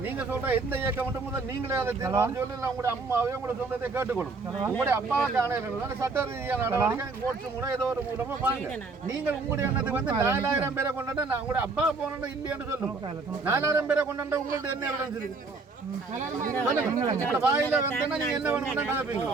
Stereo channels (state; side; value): quieter; left; 3.9 dB